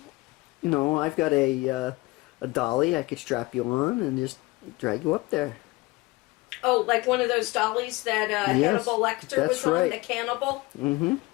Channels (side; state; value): right; quieter; 22.6 dB